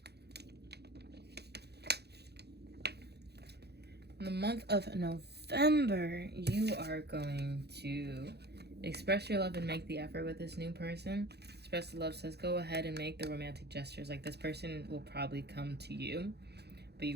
In the month of November, you are going to express your love and make the effort with this new person. Express the love says, go ahead and make the romantic gestures. Like, this person will probably come to you, but you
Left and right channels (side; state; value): left; late; 0.48 ms